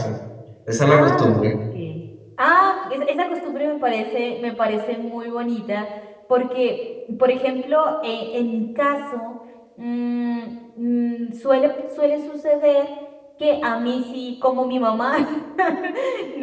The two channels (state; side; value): identical; both; correlation 1.00